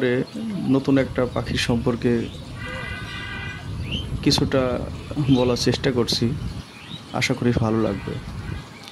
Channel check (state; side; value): identical; both; correlation 1.00